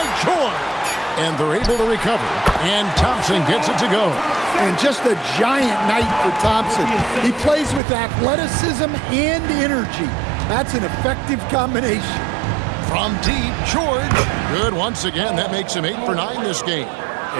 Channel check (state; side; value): drops out; left; at 7.8 s